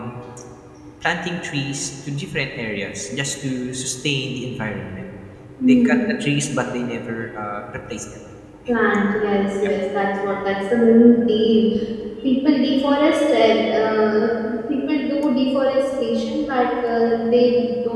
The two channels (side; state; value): both; identical; correlation 1.00